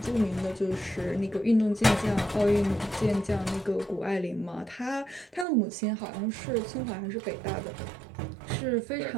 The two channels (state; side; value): drops out; left; at 5.5 s